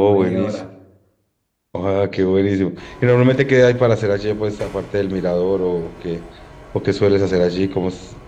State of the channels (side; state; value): both; identical; correlation 1.00